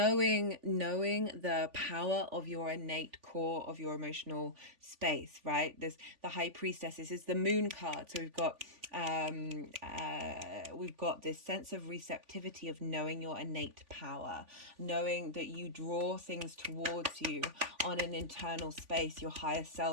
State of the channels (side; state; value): left; late; 3.5 ms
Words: the power of your innate core of your emotional space, right? This, the High Priestess, this is the moon card, so we've got this sense of receptivity of knowing your innate power, knowing that you draw things towards you on an internal space. Your higher